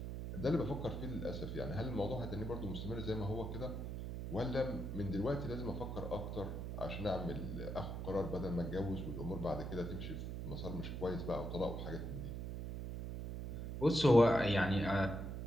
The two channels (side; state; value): right; noise; hum, 5 dB below the sound